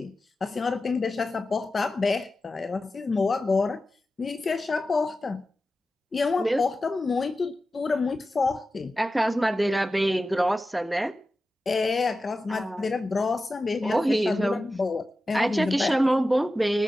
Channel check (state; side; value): normal; both; correlation 0.93